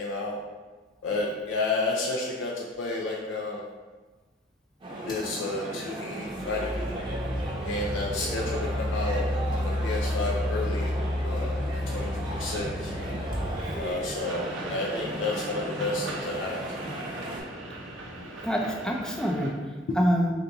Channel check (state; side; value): normal; both; correlation 0.53